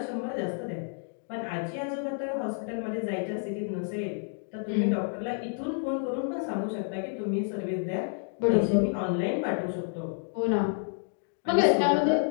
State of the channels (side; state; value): right; silent; 58 dB below the other